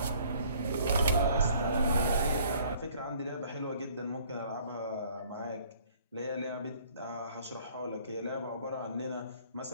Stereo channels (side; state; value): both; inverted; correlation -0.57